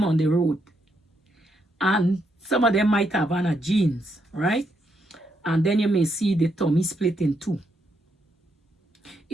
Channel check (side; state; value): both; normal; correlation 0.78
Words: on the road and some of them might have on a jeans, right? And then you may see the tummy split in two.